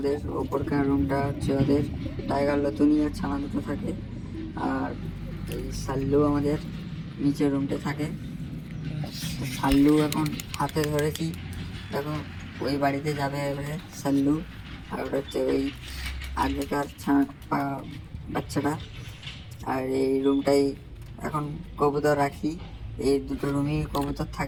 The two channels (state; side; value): identical; both; correlation 1.00